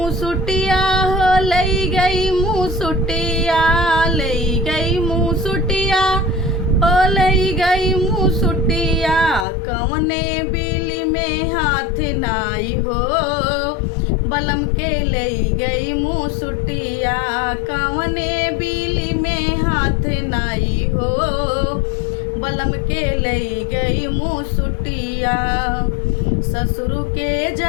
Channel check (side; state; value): right; drops out; at 9.5 s